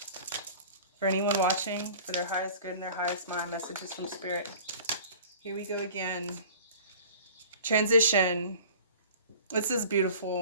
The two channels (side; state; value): both; inverted; correlation -0.44